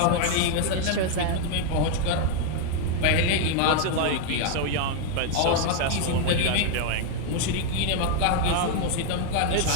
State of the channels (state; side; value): different; both; correlation 0.00